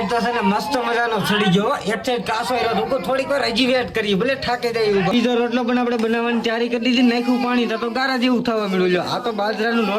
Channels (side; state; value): both; identical; correlation 1.00